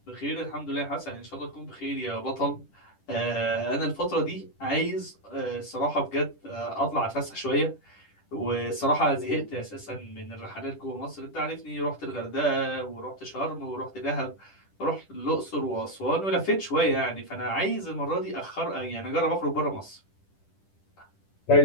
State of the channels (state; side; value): late; right; 10 ms